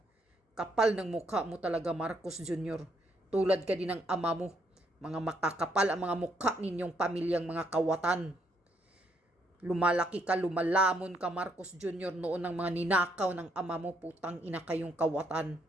Kapal ng mukha mo talaga, Marcos Jr. Tulad ka din ng ama mo. Mga makakapal ang mga mukha ninyong pamilyang mga kawatan. Lumalaki ka, lumalamon ka, Marcos Jr. noon ng mga ninakaw ng ama mo, putang ina kayong kawatan.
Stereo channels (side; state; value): both; normal; correlation 0.73